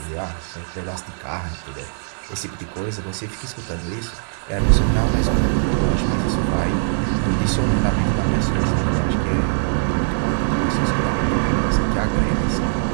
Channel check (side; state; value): left; silent; digital silence